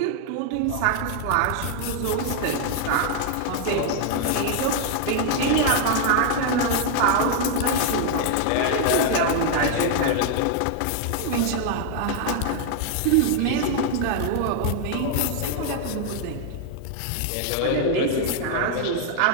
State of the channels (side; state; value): both; different; correlation 0.00